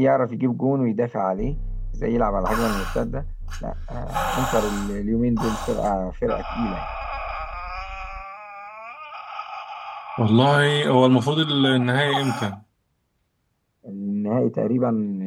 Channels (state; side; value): identical; both; correlation 1.00